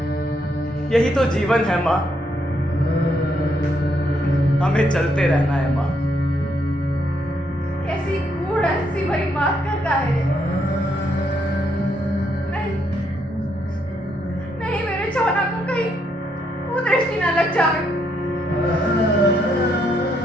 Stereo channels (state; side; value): normal; both; correlation 0.75